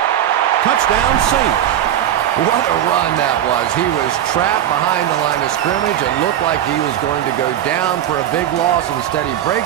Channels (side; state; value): left; quieter; 11.2 dB